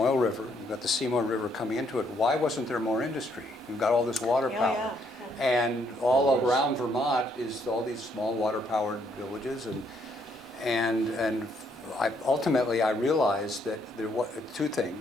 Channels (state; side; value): normal; both; correlation 0.70